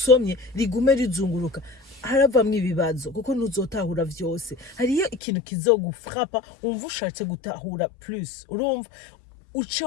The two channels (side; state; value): right; drops out; at 5.2 s